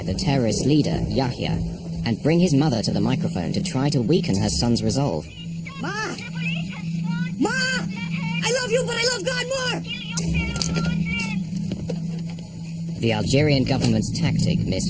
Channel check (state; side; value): identical; both; correlation 1.00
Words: the terrorist leader, Yahya, and bring his mother to the microphone to try to weaken her son's resolve. Ma! Ma! I love you, but I love God more! The Algerian government's tactic